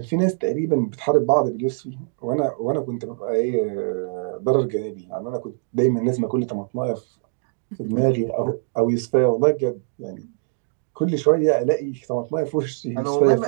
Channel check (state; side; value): silent; left; digital silence